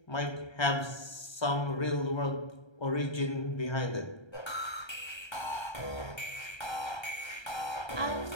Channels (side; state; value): right; late; 1.3 ms